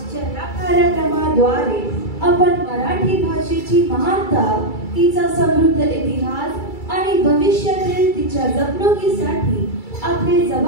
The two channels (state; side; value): late; right; 2.3 ms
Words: या कार्यक्रमाद्वारे आपण मराठी भाषेची महानता, तिचा समृद्ध इतिहास आणि भविष्यातील तिच्या जपणुकीसाठी आपली